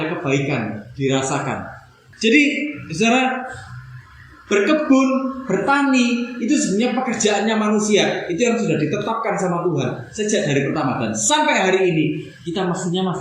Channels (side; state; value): both; identical; correlation 1.00